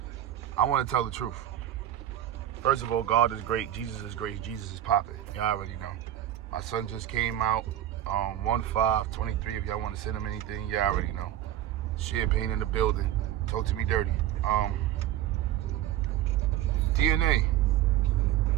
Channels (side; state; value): left; quieter; 12.3 dB